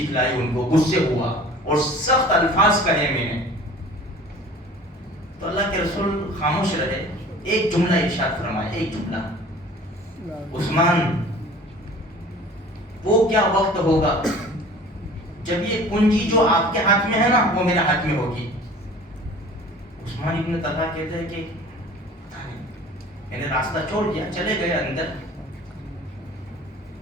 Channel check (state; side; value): normal; both; correlation 0.45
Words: دکھلائی، ان کو غصے ہوا اور سخت الفاظ کہے میں نے. تو اللہ کے رسول خاموش رہے. ایک جملہ ارشاد فرمایا، ایک جملہ، عثمان وہ کیا وقت ہوگا جب یہ کنجی جو آپ کے ہاتھ میں ہے نا وہ میرے ہاتھ میں ہوگی. عثمان ابن طلحہ کہتے ہیں کہ میں نے راستہ چھوڑ دیا، چلے گئے اندر.